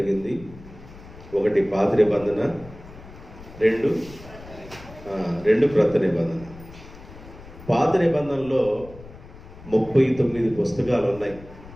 ఒకటి పాత నిబంధన, రెండు క్రొత్త నిబంధన. పాత నిబంధనలో 39 పుస్తకాలు ఉన్నాయి.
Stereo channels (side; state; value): left; noise; rumble, 18 dB below the sound